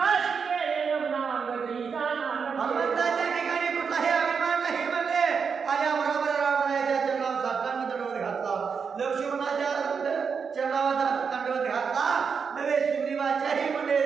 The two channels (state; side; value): quieter; left; 6.0 dB